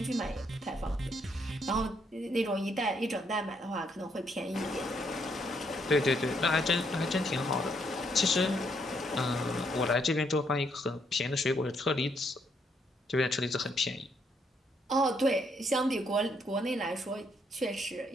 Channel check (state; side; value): normal; both; correlation 0.73